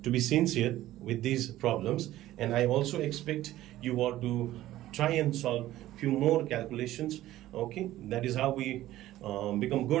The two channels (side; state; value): left; quieter; 14.9 dB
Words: sincere with these problems, and I also expect you all to try and solve few more calculations. Okay, that is how we become